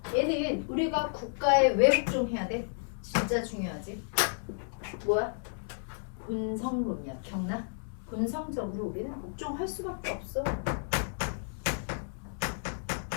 얘는 우리가 국가에 왜 복종해야 돼? 진짜 중요하지? 뭐야? 본성론이야. 기억나? 본성적으로 우리는 복종할 수밖에 없어.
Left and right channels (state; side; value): silent; right; digital silence